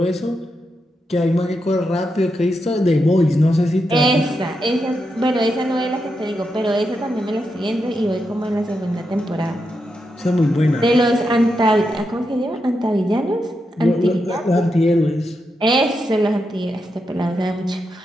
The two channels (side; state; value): both; normal; correlation 0.85